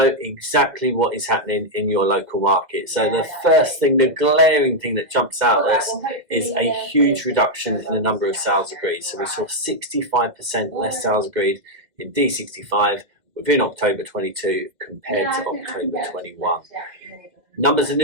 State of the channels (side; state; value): left; late; 2.1 ms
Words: exactly what is happening in your local market. So the first thing, the glaring thing that jumps out at us is a huge reduction in the number of sales agreed. So we saw 65% less sales agreed in DE65 within October 22 compared to October 21. Numbers of